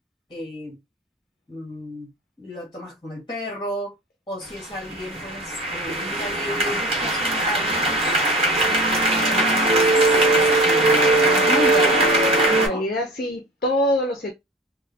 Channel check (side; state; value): both; normal; correlation 0.36